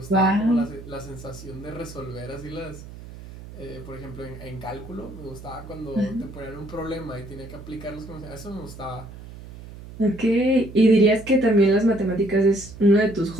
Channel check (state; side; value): noise; right; hum, 15 dB below the sound